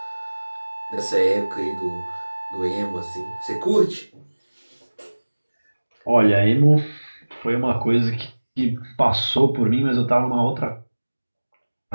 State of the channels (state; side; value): inverted; both; correlation -1.00